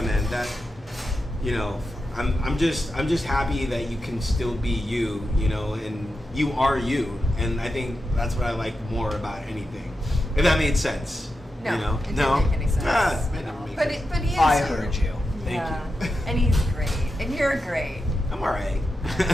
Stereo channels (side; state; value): both; normal; correlation 0.89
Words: man, you know, I'm just happy that you can still be you, you know, and you are you, and I think that's what I like more about anything. If that made sense. No, you know? it didn't make any sense. Ah, it didn't make But sense. but he is. I heard you. Thank you. And he's great, and you're great. I'm alright.